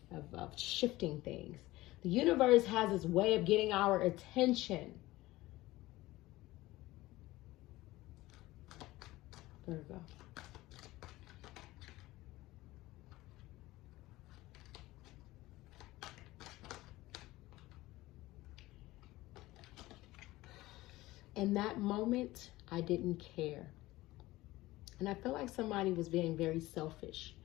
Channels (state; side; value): quieter; right; 18.3 dB